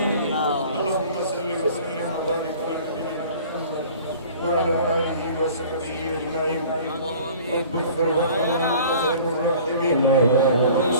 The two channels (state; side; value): inverted; both; correlation -0.47